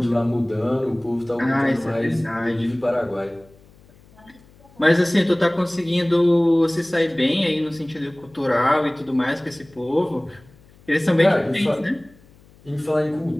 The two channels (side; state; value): left; noise; hum, 27 dB below the sound